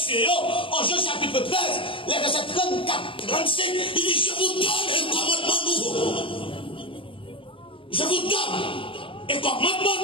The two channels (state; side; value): late; right; 0.25 ms